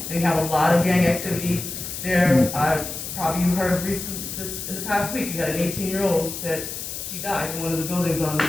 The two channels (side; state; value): left; noise; hiss, 7 dB below the sound